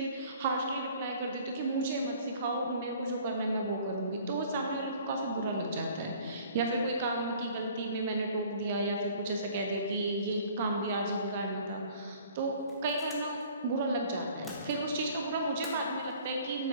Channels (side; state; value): both; inverted; correlation -0.52